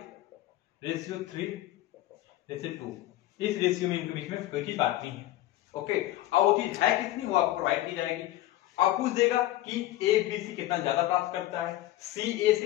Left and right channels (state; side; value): quieter; right; 15.4 dB